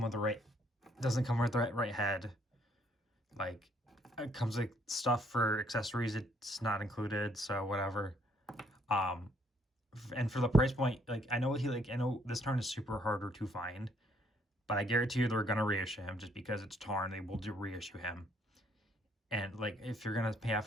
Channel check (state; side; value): normal; both; correlation 0.67